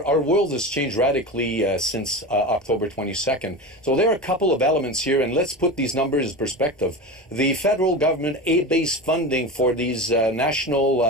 world has changed radically since October 22nd. So there are a couple of elements here, and let's put these numbers in perspective. The federal government aid-based funding for these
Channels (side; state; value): both; normal; correlation 0.26